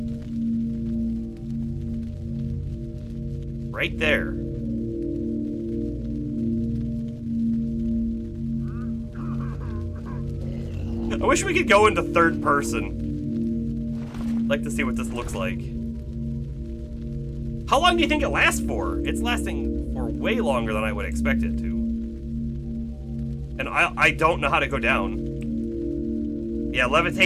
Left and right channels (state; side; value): identical; both; correlation 1.00